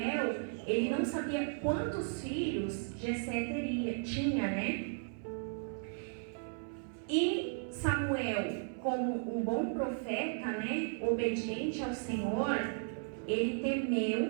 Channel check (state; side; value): silent; left; 54 dB below the other